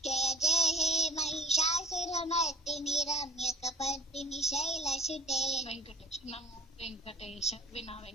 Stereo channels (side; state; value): both; normal; correlation 0.45